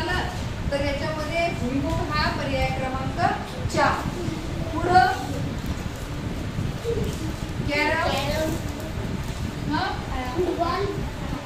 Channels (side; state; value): both; identical; correlation 1.00